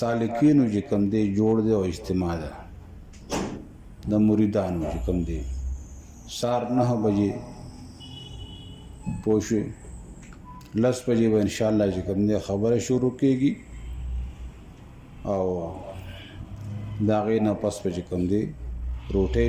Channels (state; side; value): identical; both; correlation 1.00